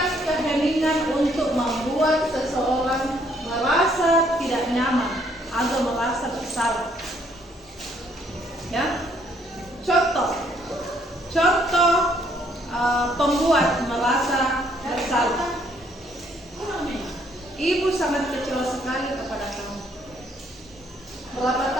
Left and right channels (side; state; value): both; normal; correlation 0.67